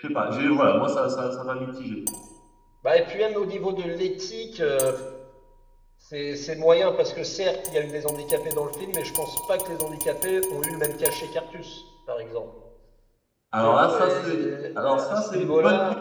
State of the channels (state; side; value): identical; both; correlation 1.00